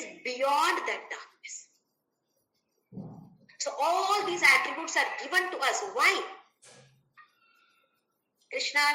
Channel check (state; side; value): identical; both; correlation 1.00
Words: beyond that darkness. So all these attributes are given to us. Why? Krishna